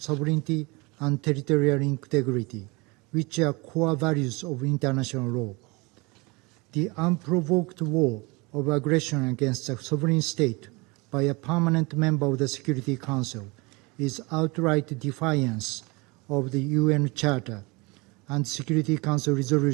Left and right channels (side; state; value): left; quieter; 26.3 dB